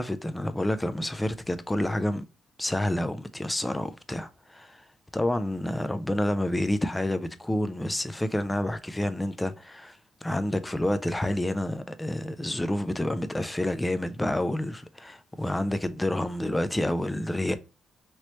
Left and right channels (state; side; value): normal; both; correlation 0.97